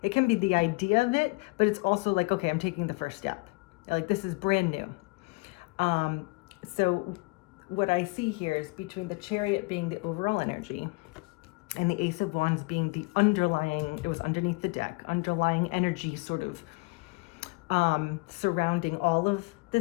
it can be the idea of it, but it's also okay, I'm taking the first step. This is brand new. So what I see here is between the Chariot being the overall energy and the Ace of Wands being the underlying, it was underneath the deck, underlying energy sort of surrounding all of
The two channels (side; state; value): right; quieter; 27.2 dB